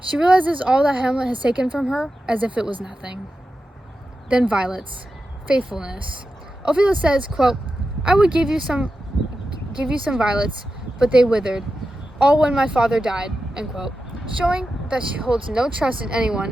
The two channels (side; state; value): both; normal; correlation 0.91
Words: She realizes all that Hamlet has taken from her as if it was nothing. Then violets. Faithfulness. Ophelia says, quote, I would give you some violets, but they withered, all when my father died, end quote, showing that she holds no trust in